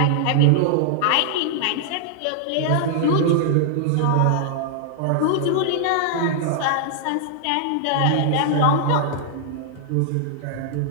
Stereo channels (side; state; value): both; different; correlation -0.01